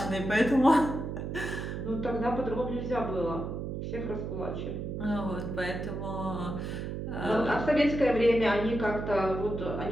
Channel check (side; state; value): right; noise; hum, 5 dB below the sound